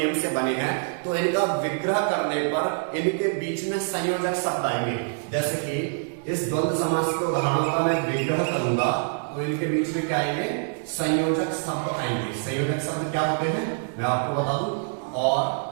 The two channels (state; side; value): silent; left; digital silence